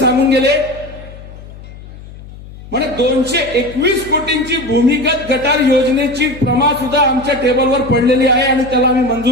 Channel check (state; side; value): noise; left; hum, 17 dB below the sound